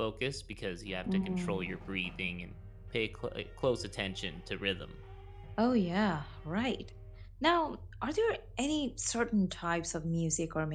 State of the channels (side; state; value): both; identical; correlation 1.00